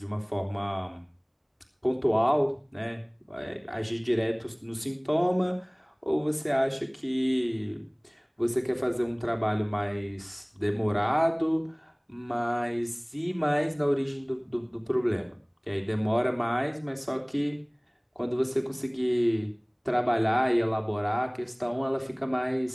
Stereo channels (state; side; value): identical; both; correlation 1.00